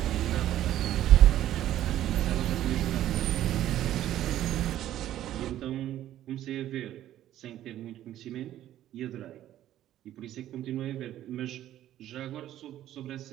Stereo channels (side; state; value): left; quieter; 12.7 dB